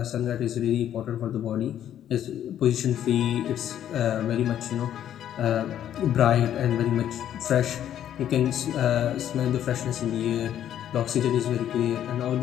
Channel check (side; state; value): right; quieter; 10.7 dB